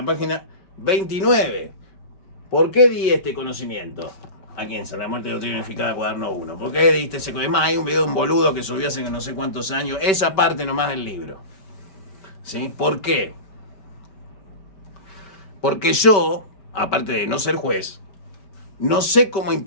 página 29. ¿Por qué di este conocimiento? Aquí en San la Muerte Doctrina Unificada, cuaderno 1. ¿Por qué diste ese conocimiento? Hay un video de un boludo que subió hace no sé cuántos años, esa parte nomás del libro, ¿sí? ¿Por qué? Porque yo, aparte de no ser juez, no sé cómo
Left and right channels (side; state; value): right; late; 5.2 ms